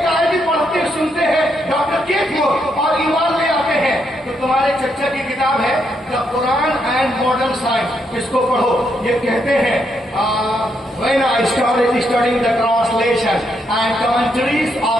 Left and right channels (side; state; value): both; normal; correlation 0.77